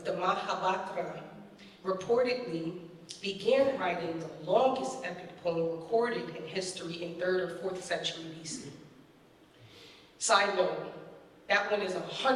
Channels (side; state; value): both; identical; correlation 1.00